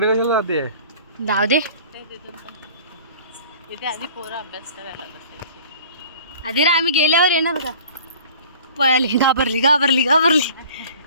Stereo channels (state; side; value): inverted; both; correlation -0.46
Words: कशाला जाते जाऊ दे इथे आधी पोरं अभ्यास करायला बसायचे. आधी रे आम्ही गेल्यावर येणार का पळाली घाबरली घाबरली घाबरली